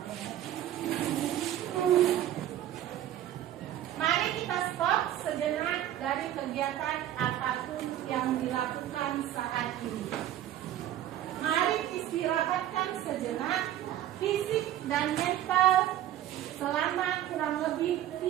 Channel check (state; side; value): quieter; left; 12.3 dB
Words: Mari kita stop sejenak dari kegiatan apapun yang dilakukan saat ini. Mari istirahatkan sejenak fisik dan mental selama kurang lebih